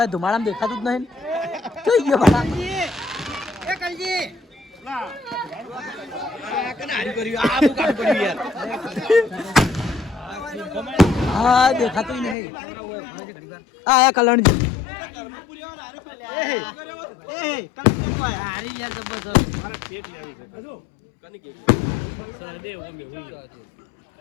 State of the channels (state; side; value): drops out; right; at 12.4 s